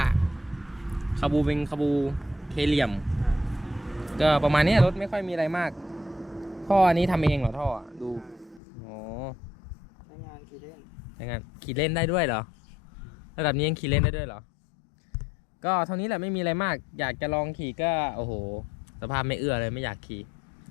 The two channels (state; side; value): drops out; right; at 8.6 s